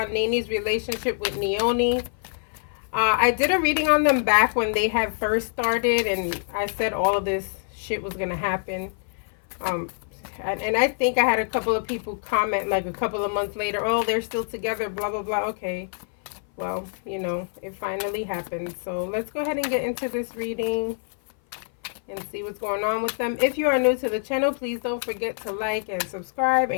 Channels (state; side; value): silent; right; 58 dB below the other